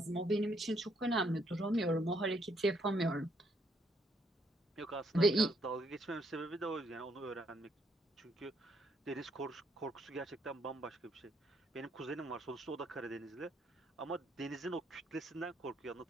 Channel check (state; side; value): normal; both; correlation 0.71